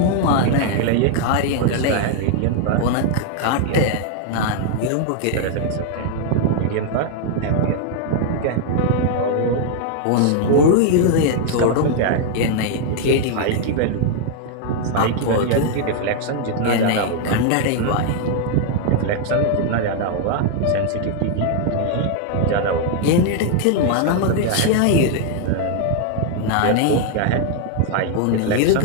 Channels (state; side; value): different; both; correlation 0.00